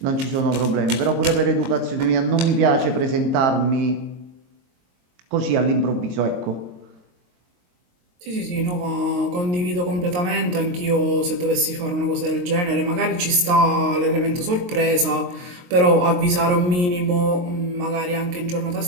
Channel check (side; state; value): left; late; 22 ms